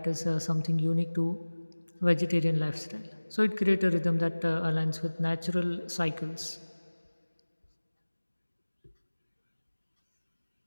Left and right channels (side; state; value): both; inverted; correlation -1.00